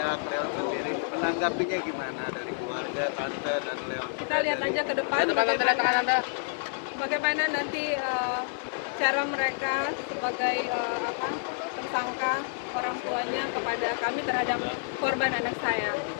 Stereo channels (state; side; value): silent; right; digital silence